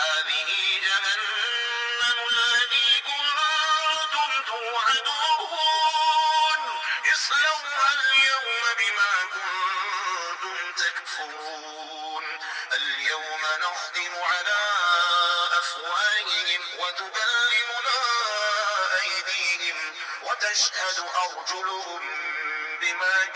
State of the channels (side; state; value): both; identical; correlation 1.00